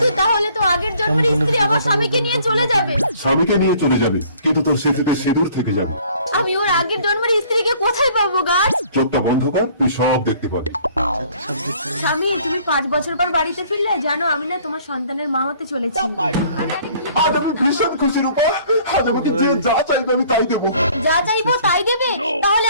তাহলে তো আগের জন্মের স্ত্রী আমার স্বামীকে নিয়ে চলে যাবে। স্বামীকে নিয়ে চলে যাবে, কিন্তু তোর স্মৃতিতে সিঁদুর থেকে যাবে। আমি ওর আগের জন্মের স্ত্রীকে কোথায় পাবো গাছ? চোখটা বন্ধ কর, তুই সব দেখতে পাবি। স্বামী, তুমি 5 বছর পর বাড়িতে ফিরলে। জানো, আমি না তোমার সন্তানের মা হতে চলেছি। আজ আমি ভীষণ খুশি রূপা। আজ আমাকে যে যা চাইবে আমি তাই দেবো। যা চাইবো তাই দেবে? তাহলে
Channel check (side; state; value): both; inverted; correlation -0.56